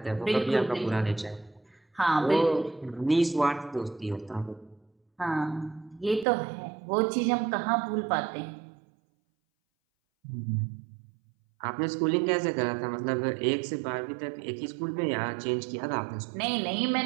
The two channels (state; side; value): drops out; left; at 6.2 s